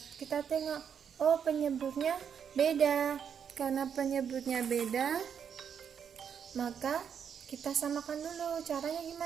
Kita tengok. Oh, penyebutnya beda. Karena penyebutnya beda, maka kita samakan dulu. Caranya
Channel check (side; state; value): left; quieter; 7.7 dB